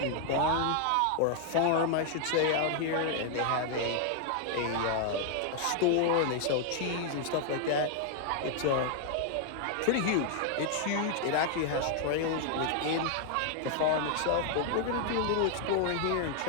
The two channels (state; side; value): different; both; correlation 0.00